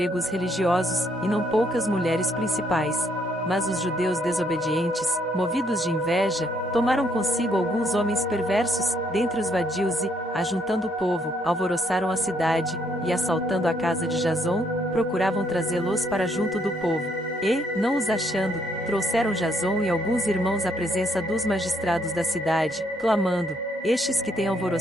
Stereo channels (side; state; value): both; normal; correlation 0.71